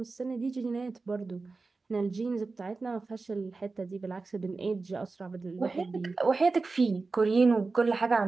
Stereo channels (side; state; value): left; quieter; 3.9 dB